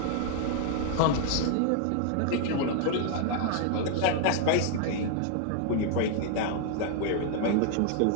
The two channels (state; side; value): different; both; correlation 0.00